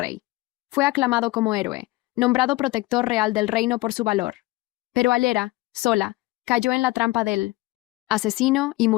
Fue aclamado como héroe, nombrado protector real del reino por su valor. Pero Ayera, sola, cayó en la trampa del asesino y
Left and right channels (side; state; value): right; quieter; 20.3 dB